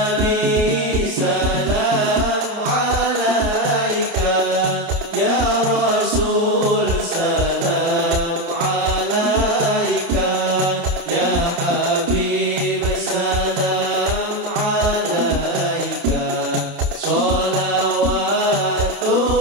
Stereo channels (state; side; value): late; left; 30 ms